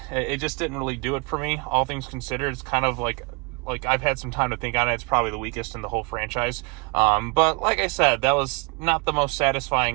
it just didn't really do it for me. All things considered, it's kind of like I've had some time to think on it. It's probably the weakest in the whole franchise. But like I said, that was not the most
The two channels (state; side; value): quieter; left; 29.8 dB